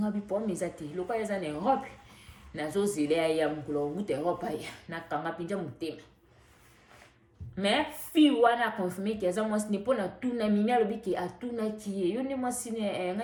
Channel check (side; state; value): both; identical; correlation 1.00